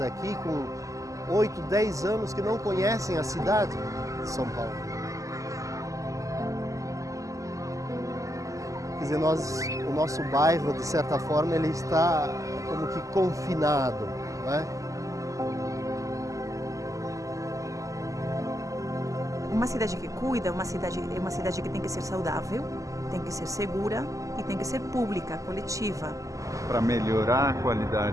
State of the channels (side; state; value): left; late; 0.16 ms